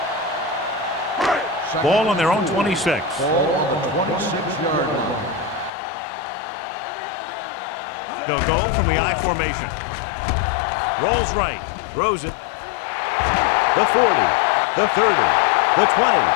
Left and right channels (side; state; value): right; drops out; at 5.7 s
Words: Ball on their own 26. Ball on the 26-yard line. Here we go, baby. They'll go from the I formation. Rolls right, throws it. The 40, the 30, the 20,